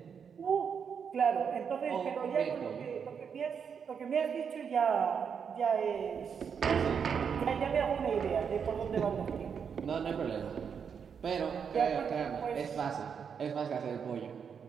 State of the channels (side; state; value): left; quieter; 6.9 dB